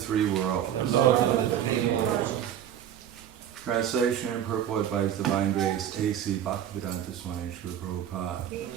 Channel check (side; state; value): left; quieter; 10.2 dB